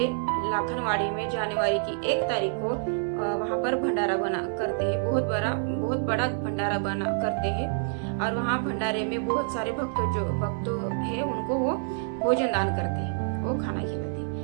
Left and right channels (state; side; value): silent; left; digital silence